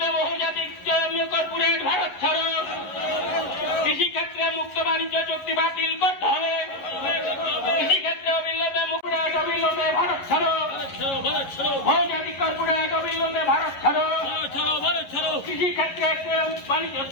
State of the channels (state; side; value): late; right; 11 ms